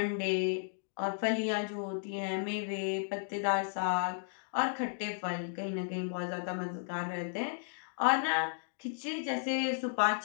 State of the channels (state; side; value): silent; right; digital silence